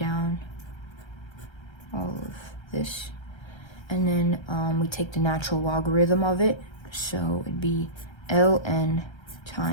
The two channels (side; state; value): right; late; 1.3 ms